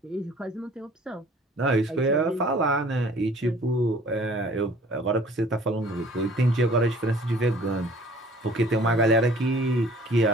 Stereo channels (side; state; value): both; normal; correlation 0.52